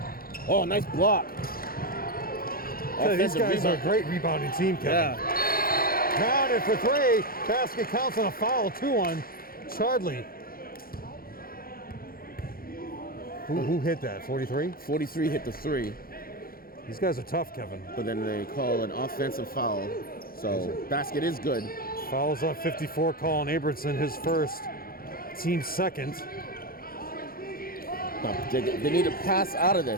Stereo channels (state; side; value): late; right; 0.43 ms